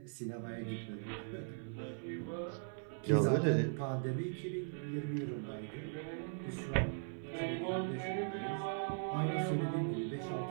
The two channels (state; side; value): silent; left; 52 dB below the other